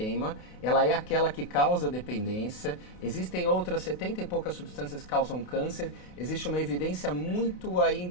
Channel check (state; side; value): late; right; 28 ms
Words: Ela é aquela que causa dependência. Existem outras 70 e poucas substâncias que causam câncer. Existe uma evidência muito